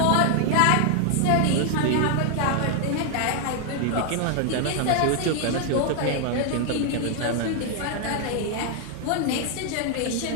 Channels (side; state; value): both; different; correlation 0.00